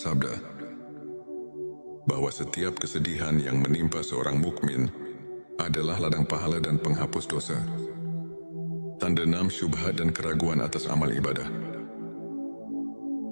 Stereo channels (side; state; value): both; inverted; correlation -1.00